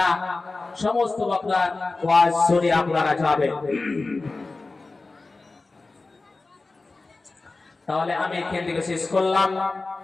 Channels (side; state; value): right; quieter; 3.5 dB